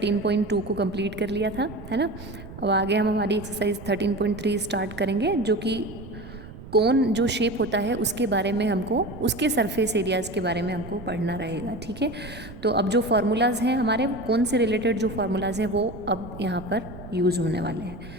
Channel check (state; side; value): noise; right; rumble, 14 dB below the sound